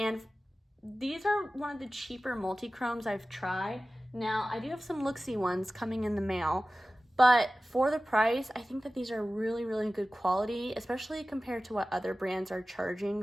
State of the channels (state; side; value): normal; both; correlation 0.96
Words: these are one of the cheaper multi-chromes I've tried. Now I do have some look-see ones coming in the mail, but for the price, I think that these are really, really good quality, especially compared to what other brands are charging